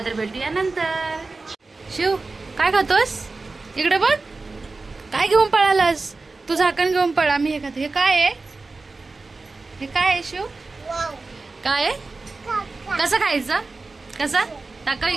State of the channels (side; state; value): left; quieter; 3.7 dB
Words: तर भेटूया नंतर. शिव काय खातोस. इकडे बघ काय घेऊन पळालास. तू झाकण घेऊन पळा. मी हे खाते. हे काय आहे. हे काय आहे शिव. काय आहे. कसं खायचं. कसं टाका